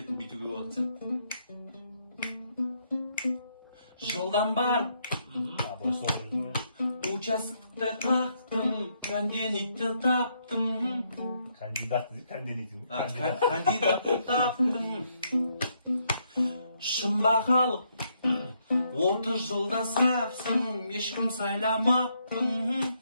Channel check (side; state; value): both; inverted; correlation -0.75